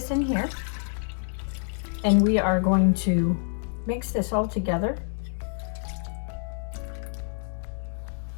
in here. And we are going to mix this all together.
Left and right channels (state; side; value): silent; right; digital silence